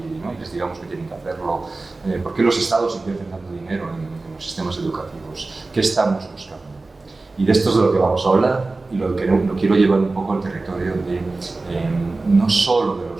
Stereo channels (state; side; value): quieter; left; 3.4 dB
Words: les digamos que tienen que hacerlo, por qué los estados invierten tanto dinero en los sistemas educativos, qué estamos buscando. Y de esto es de lo que vamos a hablar y lo quiero llevar un poco al territorio de no solo de